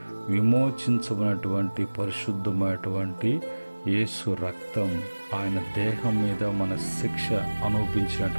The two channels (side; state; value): both; inverted; correlation -1.00